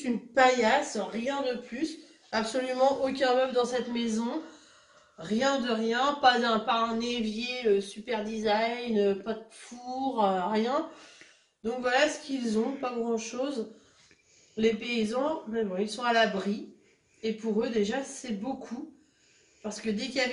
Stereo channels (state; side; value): identical; both; correlation 1.00